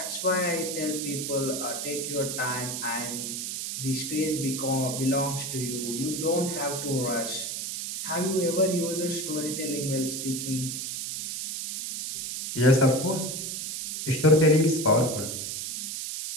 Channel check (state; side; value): noise; right; hiss, 4 dB below the sound